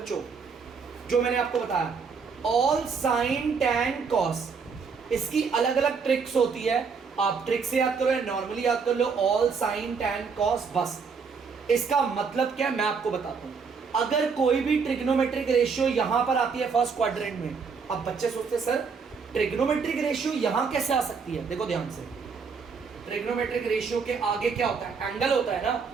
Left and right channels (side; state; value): left; quieter; 5.5 dB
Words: जो मैंने आपको बताया, ऑल साइन टैन कॉस। इसकी अलग अलग ट्रिक्स होती है, आप ट्रिक से याद करो या नॉर्मली याद कर लो, ऑल साइन टैन कॉस बस। इसका मतलब क्या है मैं आपको बताता हूं। अगर कोई भी ट्रिग्नोमेट्रिक रेशियो यहां पर आती है फर्स्ट क्वाड्रेंट में, अब बच्चे सोचते हैं सर ट्रिग्नोमेट्रिक रेशियो यहां कैसे आ सकती है। देखो ध्यान से, ट्रिग्नोमेट्रिक रेशियो के आगे क्या होता है, एंगल होता है ना।